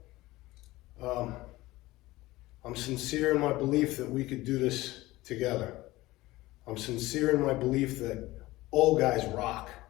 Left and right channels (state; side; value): quieter; right; 18.6 dB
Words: I'm sincere in my belief that we could do this together. I'm sincere in my belief that old guys rock.